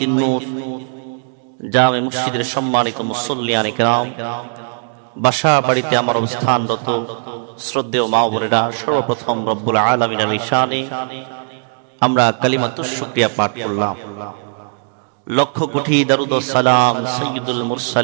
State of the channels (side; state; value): left; silent; 67 dB below the other